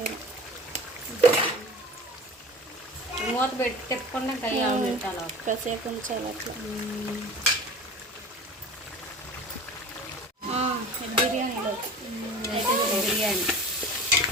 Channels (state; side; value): normal; both; correlation 0.38